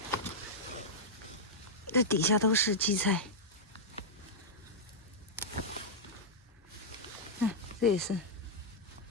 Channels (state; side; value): normal; both; correlation -0.07